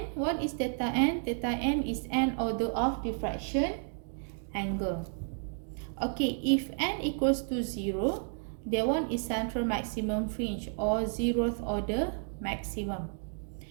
What is theta n? Theta n is n order of diffraction angle. Okay, if n equals to 0, that one is central maximum fringe or 0th order maximum.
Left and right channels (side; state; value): left; silent; 56 dB below the other